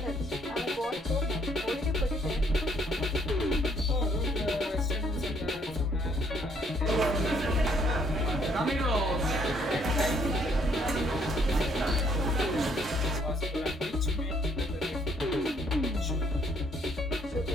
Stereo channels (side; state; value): both; normal; correlation 0.67